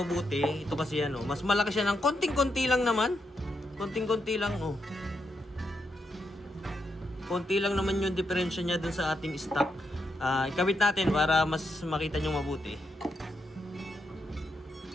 mabuti. Ito kasi ano, mas malaki siya ng konting-konti lang naman. Konting-konti lang oh. Konti lang naman yung diferensya niya dun sa ating stock. Ikabit natin para mas makita nyo mabuti.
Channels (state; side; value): normal; both; correlation 0.82